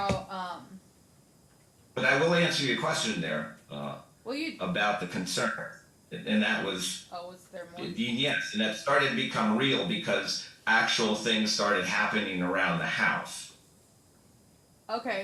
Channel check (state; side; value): identical; both; correlation 1.00